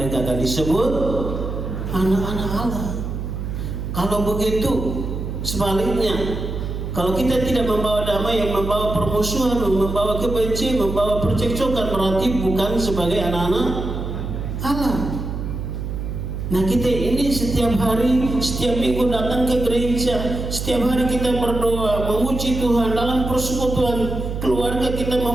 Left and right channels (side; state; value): right; noise; hum, 5 dB below the sound